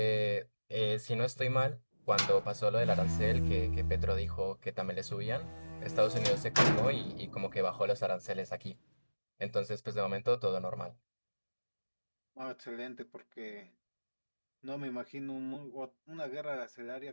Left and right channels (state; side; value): inverted; both; correlation -1.00